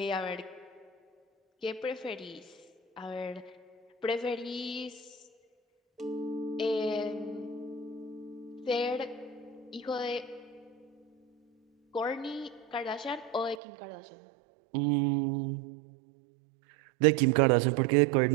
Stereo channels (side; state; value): left; drops out; at 13.6 s